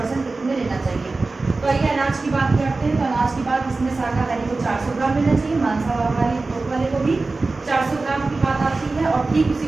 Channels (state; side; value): quieter; left; 3.6 dB